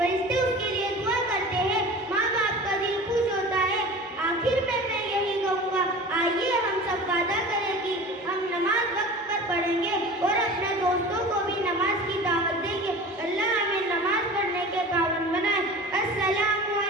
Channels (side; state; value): both; normal; correlation 0.37